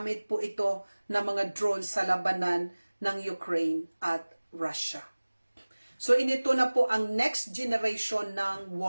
po ito ng mga drones sa labanan ng Ukraine at Russia. So inito na po ang next generation ng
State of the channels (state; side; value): inverted; both; correlation -1.00